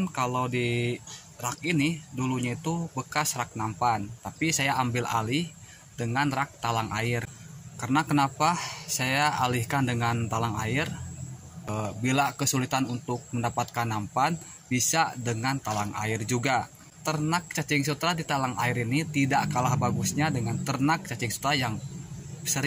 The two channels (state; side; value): identical; both; correlation 1.00